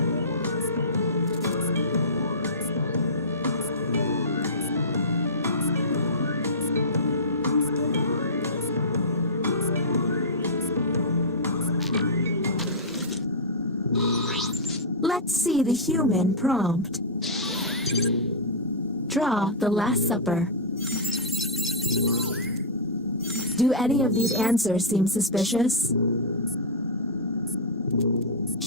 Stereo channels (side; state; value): both; normal; correlation -0.14